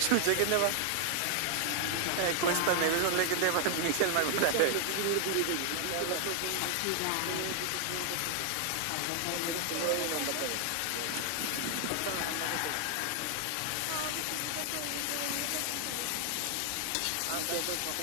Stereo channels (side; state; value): both; different; correlation 0.00